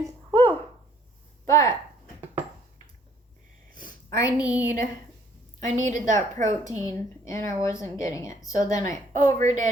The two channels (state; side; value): normal; both; correlation 0.62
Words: Whew. But I needed that protein and I wasn't getting it. So then I overdid